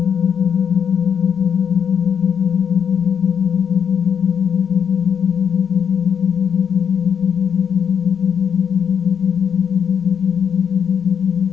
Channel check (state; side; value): quieter; right; 7.5 dB